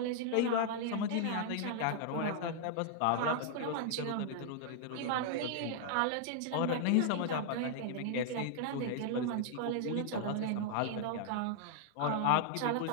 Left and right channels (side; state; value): both; different; correlation 0.00